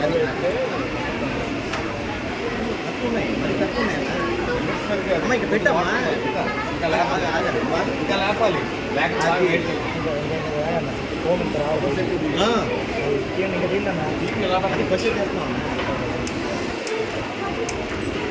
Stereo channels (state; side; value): identical; both; correlation 1.00